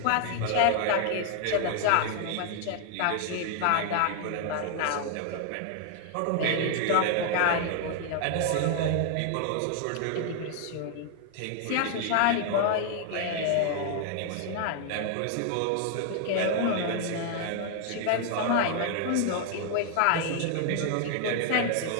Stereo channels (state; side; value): different; both; correlation 0.00